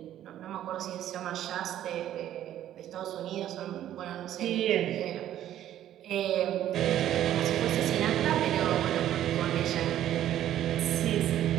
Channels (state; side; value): quieter; left; 11.9 dB